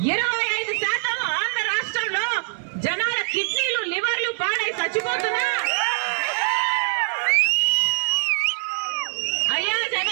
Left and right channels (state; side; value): silent; left; digital silence